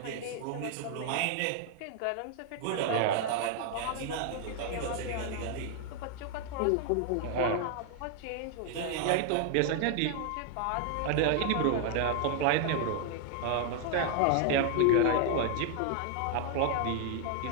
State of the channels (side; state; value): both; different; correlation 0.00